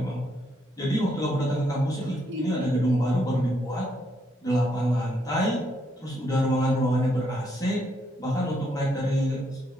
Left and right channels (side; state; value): both; normal; correlation 0.75